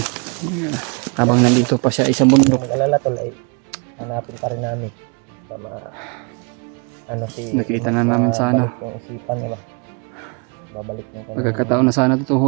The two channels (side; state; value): left; quieter; 33.6 dB